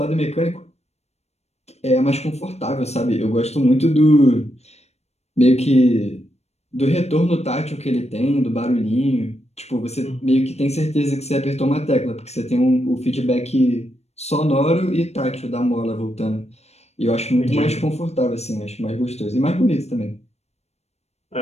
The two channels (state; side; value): late; right; 0.31 ms